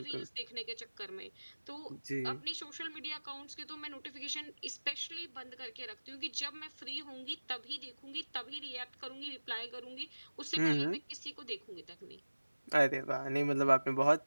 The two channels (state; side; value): inverted; both; correlation -1.00